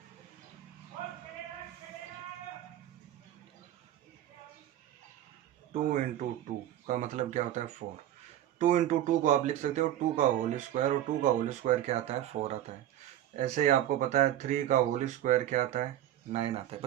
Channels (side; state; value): left; quieter; 12.3 dB